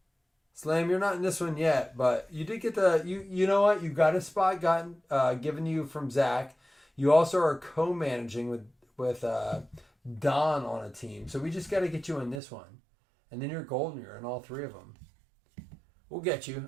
Slam, you're not in this one yet, but you did get the... You know what? You got a spot given you from Zach. You also are co-managing with Don on a team. So we just got to get you in this one. And then you're golden. You're in all 3 of them. We'll get you.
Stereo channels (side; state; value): left; drops out; at 12.4 s